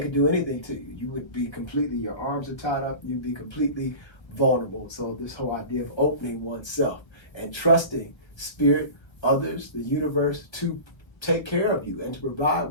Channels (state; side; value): late; right; 1.2 ms